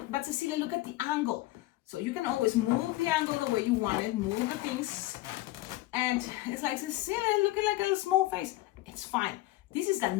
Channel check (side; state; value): right; quieter; 18.0 dB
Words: but Cecilia, look at the angle. So you can always move the angle the way you want it, move the things. And it's like, Cecilia, looking like a little small face. It's fine. This is the